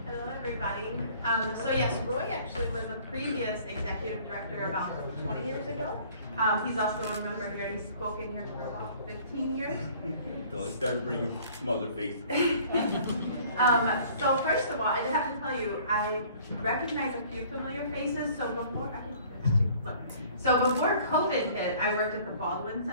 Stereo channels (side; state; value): both; inverted; correlation -0.53